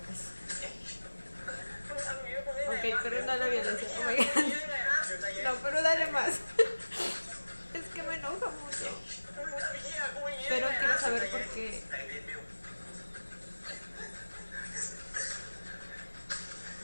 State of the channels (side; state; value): both; inverted; correlation -1.00